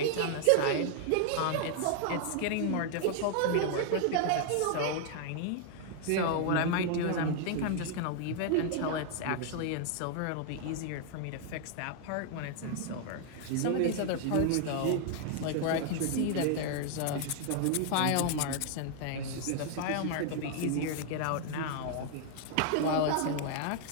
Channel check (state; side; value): different; both; correlation 0.00